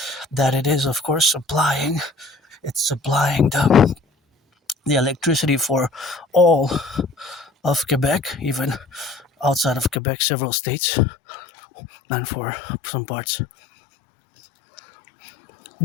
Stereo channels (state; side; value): drops out; right; at 10.0 s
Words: that it is, of course, supplying the electricity for all of Quebec, even outside of Quebec, several states, and for some parts.